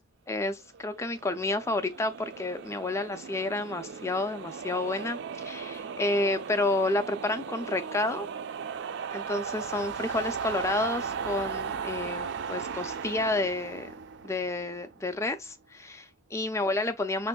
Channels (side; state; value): both; normal; correlation 0.37